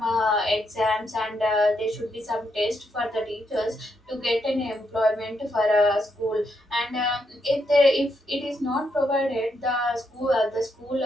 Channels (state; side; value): normal; both; correlation 0.79